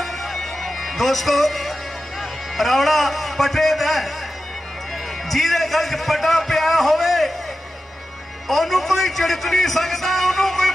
दोस्तों रौड़ा पटे दा जिहदे गल च पटा पिया होवे ओनू कोई झिड़क नहीं सकता ओनू कोई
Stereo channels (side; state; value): both; normal; correlation 0.92